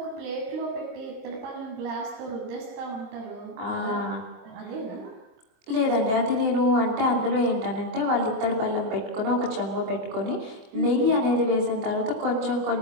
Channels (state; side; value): late; left; 23 ms